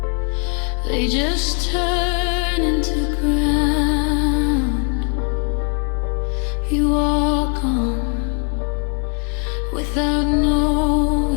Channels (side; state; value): right; quieter; 38.3 dB